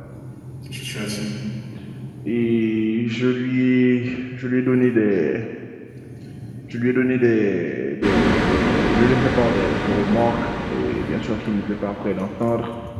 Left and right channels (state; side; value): identical; both; correlation 1.00